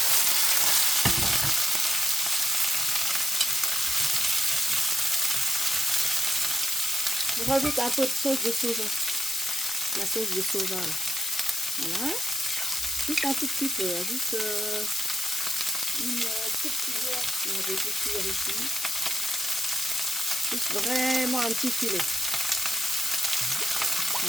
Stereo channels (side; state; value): left; noise; hiss, 3 dB below the sound